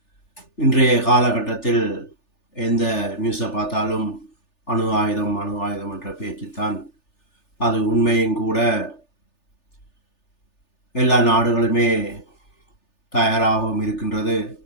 இன்றைய காலகட்டத்தில் எந்த நியூஸை பார்த்தாலும் அணு ஆயுதம் அணு ஆயுதம் என்ற பேச்சுத்தான். அது உண்மையும் கூட. எல்லா நாடுகளுமே தயாராகவும் இருக்கின்றது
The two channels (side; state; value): right; late; 3.4 ms